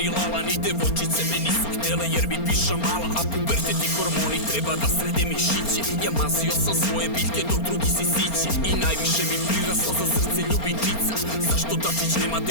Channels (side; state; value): right; late; 4.3 ms